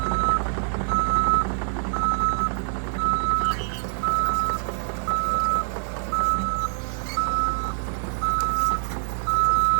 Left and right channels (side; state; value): left; silent; digital silence